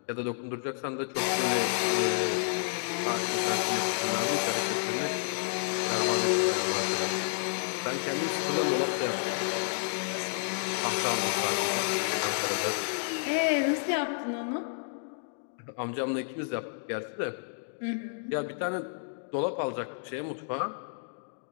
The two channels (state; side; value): silent; right; digital silence